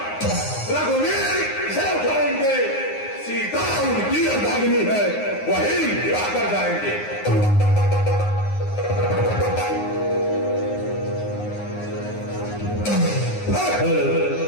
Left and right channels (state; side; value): late; right; 9.6 ms